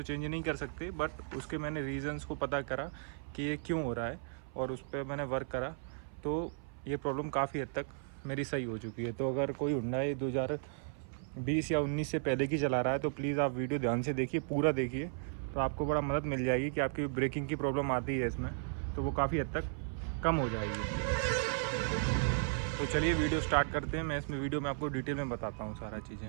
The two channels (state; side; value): silent; left; 54 dB below the other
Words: चेंज नहीं कर सकते, बट उसके मैंने रीज़न्स को पता करा कि ये क्यों हो रहा है और उस पर मैंने वर्क करा, तो ये प्रॉब्लम काफ़ी हद तक मेरी सही हो चुकी है। तो अगर कोई हुंडई 2020 या 19 से पहले की चला रहा है तो प्लीज़ आप वीडियो ध्यान से देखिए, पूरा देखिए, तो आपको बड़ा मदद मिल जाएगी कि आपकी ब्रेकिंग की प्रॉब्लम आती है इसमें तो वो काफ़ी हद तक कम हो जाएगी। तो चलिए वीडियो स्टार्ट करते हैं। मैं इसमें वीडियो में आपको डिटेल में बताता हूँ सारा